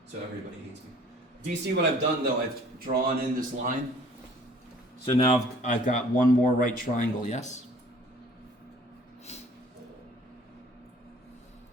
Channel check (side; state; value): both; normal; correlation 0.53